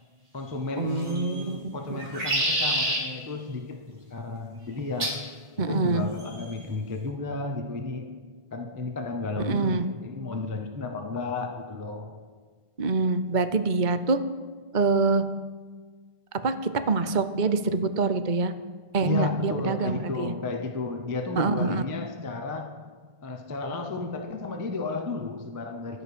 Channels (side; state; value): left; late; 1.5 ms